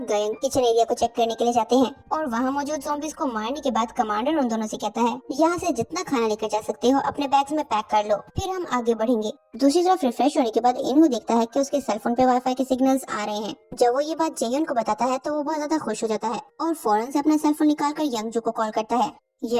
गयंग किचन एरिया को चेक करने के लिए जाते हैं, और वहाँ मौजूद ज़ॉम्बीज को मारने के बाद कमांडर उन दोनों से कहता है, यहाँ से जितना खाना लेकर जा सकते हो अपने बैग्स में पैक कर लो, फिर हम आगे बढ़ेंगे। दूसरी तरफ रिफ्रेश होने के बाद इनहू देखता है कि उसके सेलफोन पे वाईफाई के सिग्नल्स आ रहे हैं। जब वो ये बात जेयुन को बताता है तो वो बहुत ज्यादा खुश हो जाता है और फौरन से अपना सेलफोन निकालकर यंगजू को कॉल करता है।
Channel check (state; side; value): identical; both; correlation 1.00